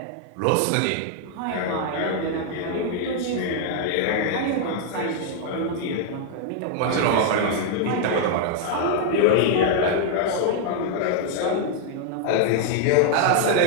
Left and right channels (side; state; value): both; different; correlation 0.00